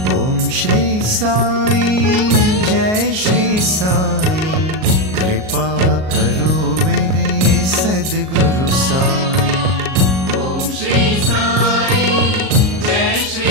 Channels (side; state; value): left; late; 38 ms